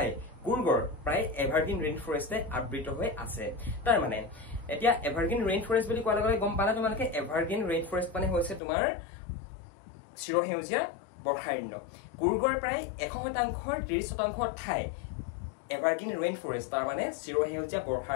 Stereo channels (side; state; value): right; drops out; at 8.6 s